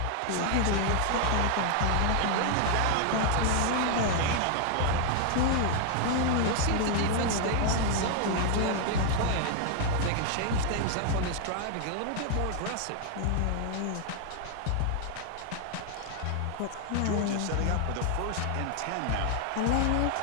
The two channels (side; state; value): both; different; correlation 0.00